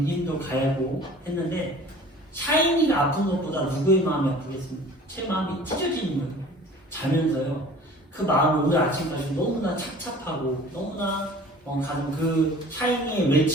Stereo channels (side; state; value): both; normal; correlation 0.46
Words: 힘도 가하고 했는데 샤이니가 아픈 것보다 누구의 마음이 아프겠습니까? 제 마음이 찢어지는 거예요. 자면서요. 그 마음을 오늘 아침까지 너무나 착잡하고 너무나 가는 그 샤이니의